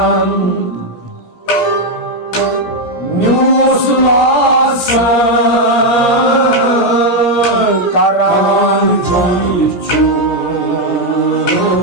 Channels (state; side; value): late; right; 17 ms